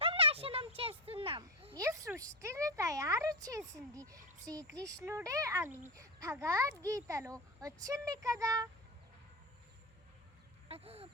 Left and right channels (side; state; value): both; normal; correlation 0.16